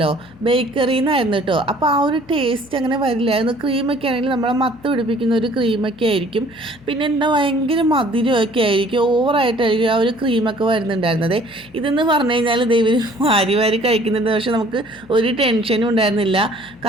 ബേക്കറിയിൽ നിന്നായിരുന്നു കേട്ടോ. അപ്പോൾ ആ ഒരു ടേസ്റ്റ് അങ്ങനെ വരില്ലായിരുന്നു. ക്രീമൊക്കെ ആണെങ്കിൽ നമ്മളെ മത്ത് പിടിപ്പിക്കുന്ന ഒരു ക്രീമൊക്കെ ആയിരിക്കും. പിന്നെ എന്താ ഭയങ്കര മധുരമൊക്കെ ആയിരിക്കും, ഓവറായിട്ടായിരിക്കും ആ ഒരു ക്രീമൊക്കെ വരുന്നുണ്ടായിരുന്നത്. ഇതെന്ന് പറഞ്ഞു കഴിഞ്ഞാൽ ഇവർ വാരി വാരി കഴിക്കുന്നുണ്ട്. പക്ഷെ നമുക്ക് ഒരു ടെൻഷനും ഉണ്ടായിരുന്നില്ല.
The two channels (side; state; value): left; noise; hum, 25 dB below the sound